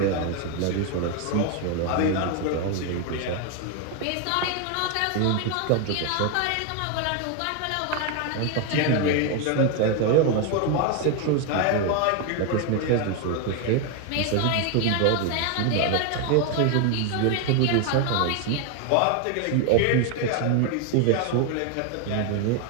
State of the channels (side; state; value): both; different; correlation 0.01